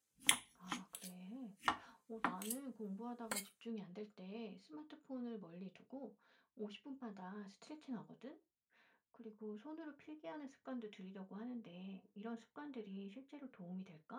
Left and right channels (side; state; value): both; identical; correlation 1.00